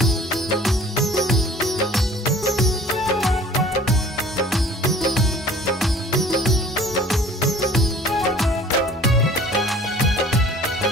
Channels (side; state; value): both; normal; correlation 0.49